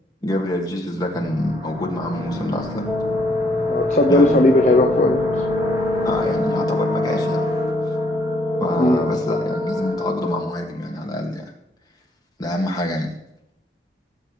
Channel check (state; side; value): normal; both; correlation 0.68